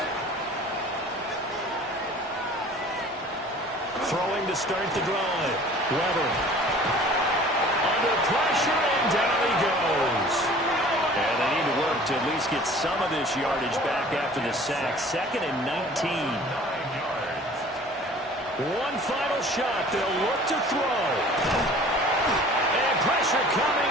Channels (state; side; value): normal; both; correlation 0.47